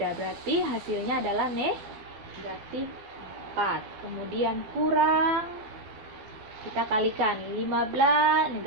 Berarti hasilnya adalah negatif 4. Kemudian kurang, kita kalikan 15,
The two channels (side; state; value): left; late; 12 ms